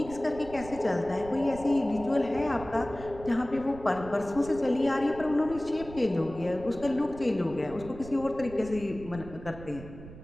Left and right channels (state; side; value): noise; right; rumble, 15 dB below the sound